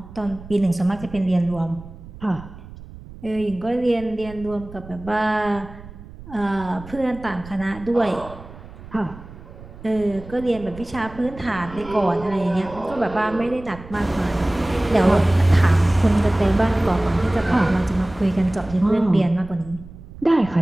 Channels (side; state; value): right; noise; rumble, 17 dB below the sound